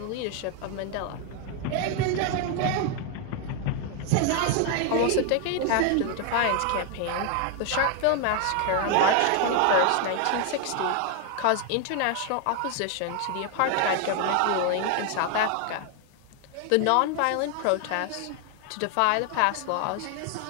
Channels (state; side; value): different; both; correlation 0.01